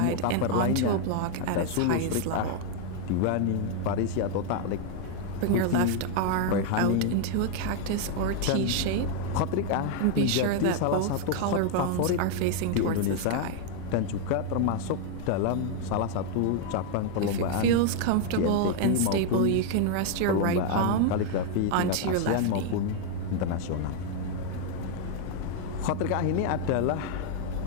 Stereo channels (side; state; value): both; different; correlation 0.00